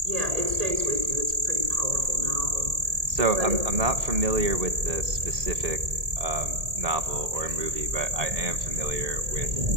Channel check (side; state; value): left; late; 1.8 ms